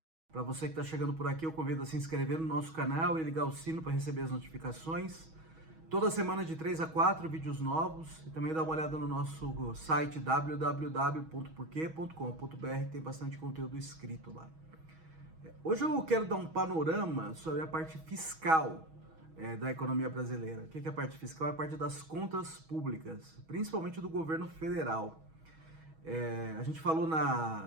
Para você que está chegando por aqui, eu convido a se inscrever no nosso canal e ligar o sino para receber as notificações. Toda semana de 3 a 4 vídeos novos e também dá uma olhada no nosso site www.porquê.com.br, tem bastante conteúdo escrito lá. Hoje eu quero dar um panorama sobre a parte fiscal da economia brasileira. O que é a parte fiscal? É a parte das contas públicas, principalmente do governo federal. A gente falou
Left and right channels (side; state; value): left; late; 6.3 ms